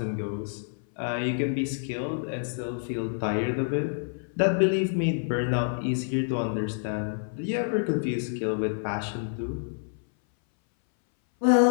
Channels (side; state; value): right; silent; 59 dB below the other